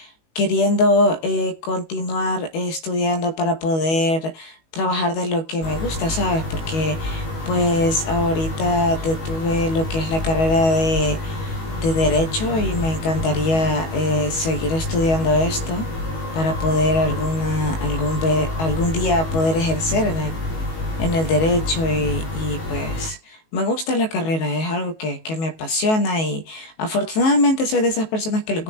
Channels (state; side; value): late; right; 19 ms